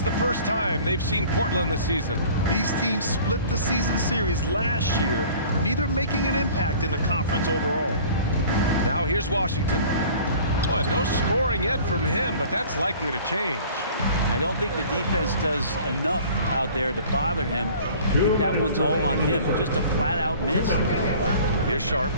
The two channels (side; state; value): both; inverted; correlation -0.47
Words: the first time they've seen Portland this season. These teams split the season series last year, neither making an impact in the conference overall. Now here's Washington. Boy, no scoring yet from him, but that's likely to change. I don't think the defense does enough out there to bother him. I think that one's all on him. Just a flat-out miss. Here's Sharp.